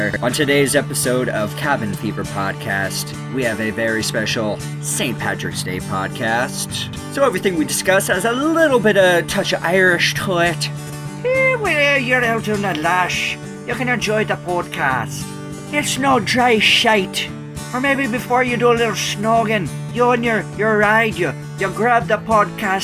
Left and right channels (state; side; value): identical; both; correlation 1.00